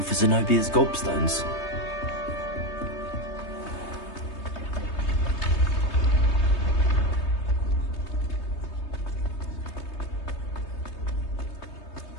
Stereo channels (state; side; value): late; right; 3.2 ms